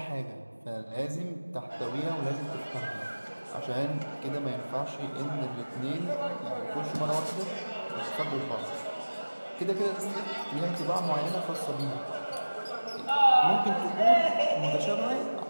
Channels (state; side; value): inverted; both; correlation -1.00